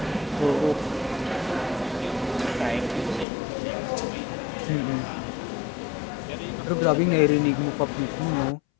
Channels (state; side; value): drops out; right; at 3.2 s